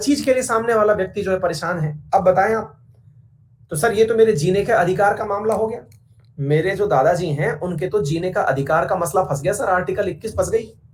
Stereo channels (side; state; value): both; identical; correlation 1.00